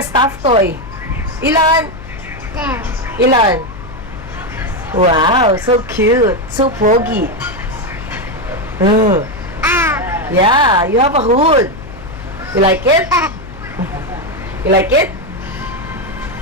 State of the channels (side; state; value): left; noise; hum, 14 dB below the sound